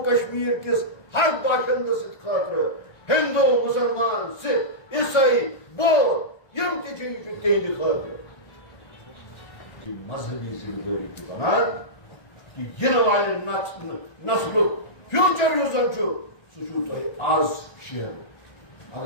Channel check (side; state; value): right; late; 1.3 ms